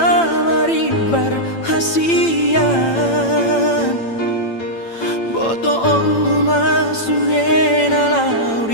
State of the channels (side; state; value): right; late; 8.9 ms